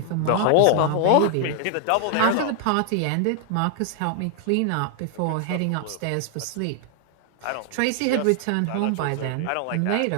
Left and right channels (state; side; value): different; both; correlation 0.00